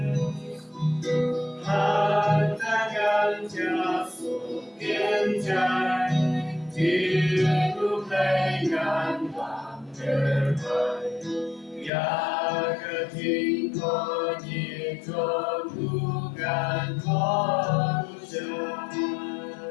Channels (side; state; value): right; drops out; at 11.9 s